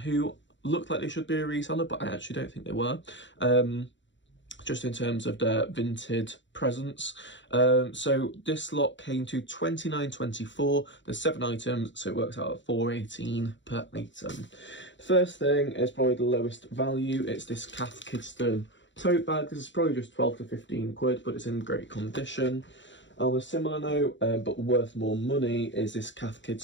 looked like they should be a reseller, but I actually don't think they were. Just in terms of their Vinted presence. So this lot came to £29.24. There's 7 items, so it works out at £4.18 per item. The first thing is probably the lowest value. It's this Cath Kidston tote bag. This is probably just 12 to 15 quid, but it's in great condition. On a similar note, but worth more money, is this Cath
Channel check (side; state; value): right; late; 0.54 ms